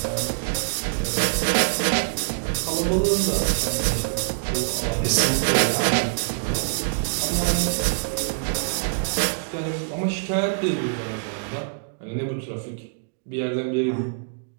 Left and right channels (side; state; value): left; silent; digital silence